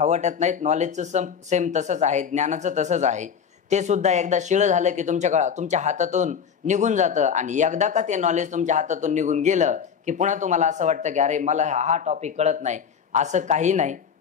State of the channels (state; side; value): quieter; right; 7.2 dB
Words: वाटत नाहीत. नॉलेजचं सेम तसंच आहे, ज्ञानाचं तसंच आहे. ते सुद्धा एकदा शिळं झालं की तुमच्या हातातून निघून जातं. आणि एकदा का ते नॉलेज तुमच्या हातातून निघून गेलं की पुन्हा तुम्हाला असं वाटतं की अरे मला हा टॉपिक कळत नाही. असं काही नाही.